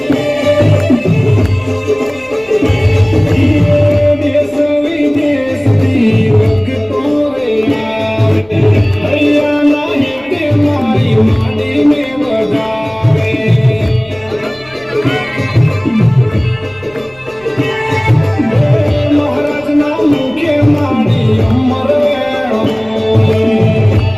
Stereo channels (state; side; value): noise; left; rumble, 27 dB below the sound